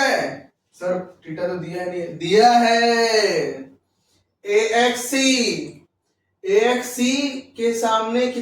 है? सर थीटा तो दिया नहीं है, दिया है AXC। AXC के सामने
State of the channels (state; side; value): identical; both; correlation 1.00